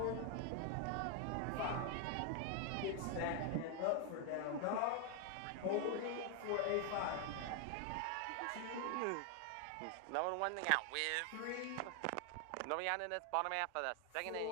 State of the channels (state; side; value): different; both; correlation 0.00